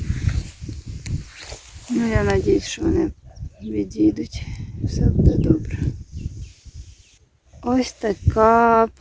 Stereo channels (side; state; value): both; identical; correlation 1.00